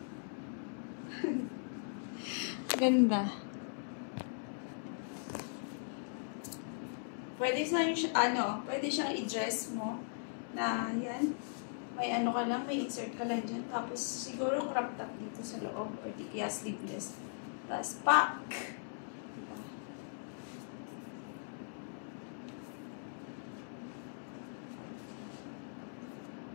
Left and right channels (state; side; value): silent; right; digital silence